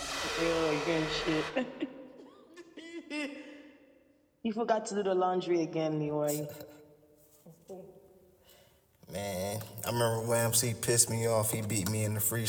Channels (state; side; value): identical; both; correlation 1.00